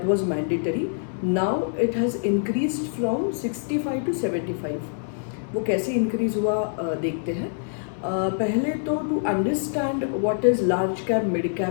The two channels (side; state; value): right; silent; 61 dB below the other